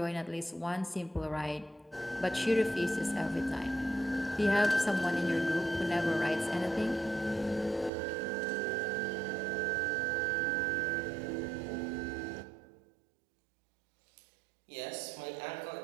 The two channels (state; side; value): drops out; left; at 7.9 s